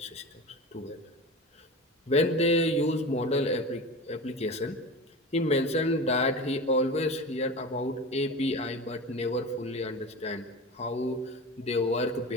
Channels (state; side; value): normal; both; correlation 0.30